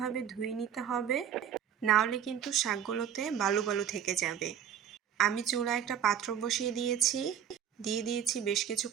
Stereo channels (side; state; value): left; quieter; 9.0 dB